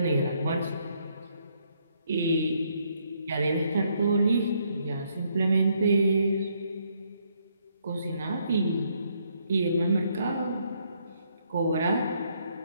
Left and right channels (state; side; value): inverted; both; correlation -0.72